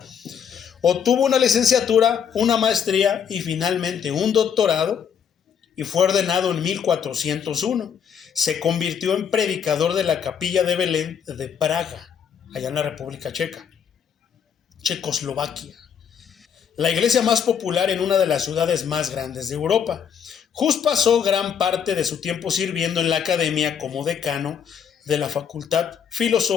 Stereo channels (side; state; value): right; quieter; 7.8 dB